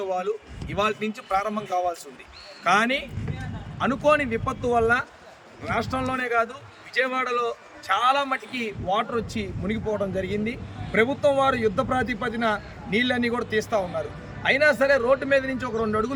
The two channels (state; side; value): identical; both; correlation 1.00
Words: ఇవాళ నుంచి ప్రారంభం కావాల్సి ఉంది. కానీ అనుకోని విపత్తు వల్ల రాష్ట్రంలోనే కాదు విజయవాడలో చాలా మటుకి వాటర్ వచ్చి మునిగిపోవడం జరిగింది. ప్రభుత్వం వారు యుద్ధ ప్రాతిపదిన నీళ్ళన్నీ కూడా తీస్తూ ఉన్నారు. అయినా సరే రోడ్డు మీద నుంచి ఒక 2